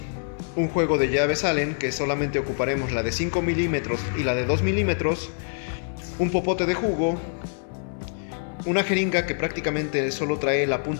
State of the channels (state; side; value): silent; right; 62 dB below the other